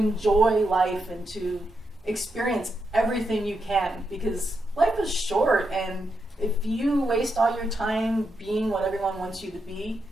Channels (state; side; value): normal; both; correlation 0.83